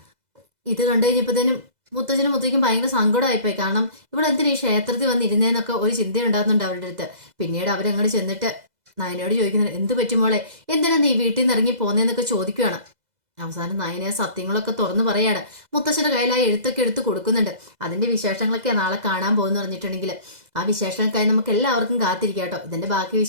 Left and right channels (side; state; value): left; late; 2.0 ms